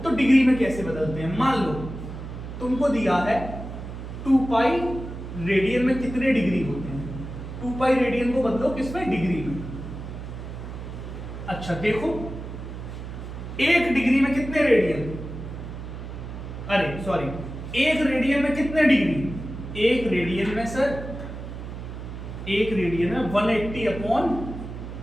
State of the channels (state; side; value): noise; right; hum, 9 dB below the sound